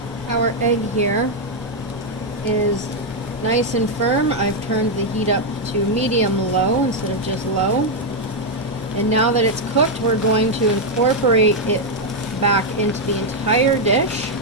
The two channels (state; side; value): normal; both; correlation 0.00